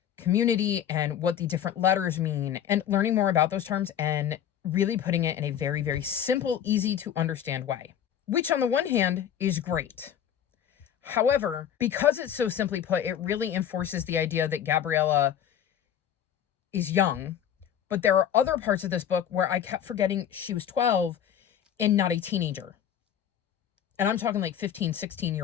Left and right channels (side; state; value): right; quieter; 9.5 dB